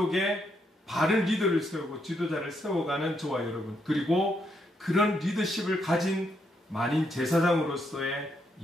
바른 리더를 세우고 지도자를 세워가는 저와 여러분, 그리고 그런 리더십을 가진 만인 제사장으로서의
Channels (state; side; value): normal; both; correlation 0.77